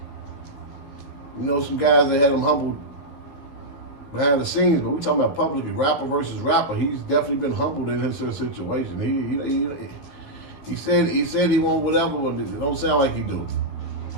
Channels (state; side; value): late; right; 14 ms